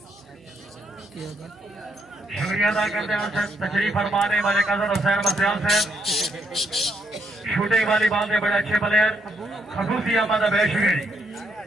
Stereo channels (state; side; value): noise; right; hum, 29 dB below the sound